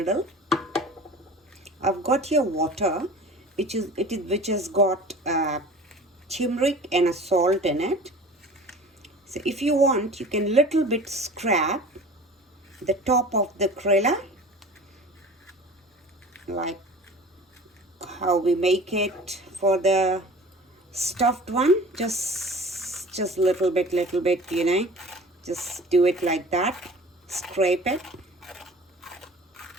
I've got here water, which has got turmeric and a salt in it. So if you want, you can little bit scrap the top of the Crayola, like how we make it for the stuffed one. Just little bit, you know, just do it like that. Scrape it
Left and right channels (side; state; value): both; normal; correlation 0.42